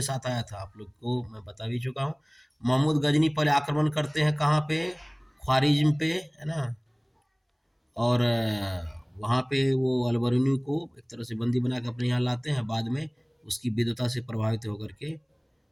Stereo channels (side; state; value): both; identical; correlation 1.00